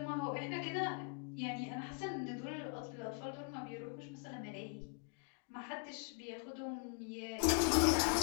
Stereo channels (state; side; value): quieter; right; 36.2 dB